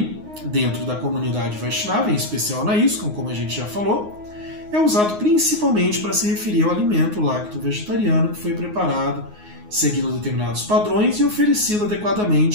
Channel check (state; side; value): late; left; 9.5 ms